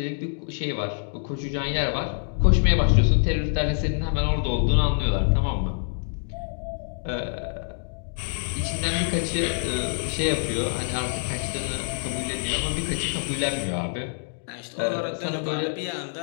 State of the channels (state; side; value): silent; right; digital silence